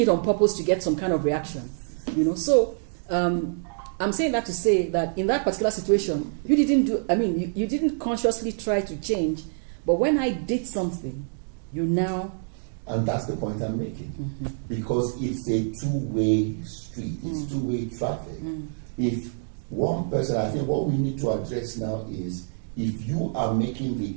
on purpose to get some kind of reaction. So I'm saying that to say that in that particular situation, you didn't consciously try to change, but when I did something, you now... And that's the point I'm making. Mm-hmm. Because it's a two-way street. It's two-way traffic. If one person, I think what we need to address now is if you are making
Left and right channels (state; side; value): silent; left; digital silence